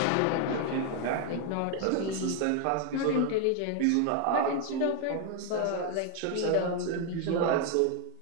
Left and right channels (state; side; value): different; both; correlation 0.01